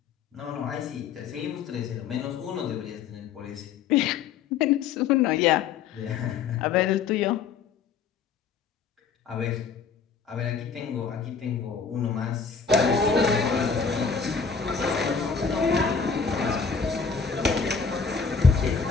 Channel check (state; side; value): quieter; right; 5.9 dB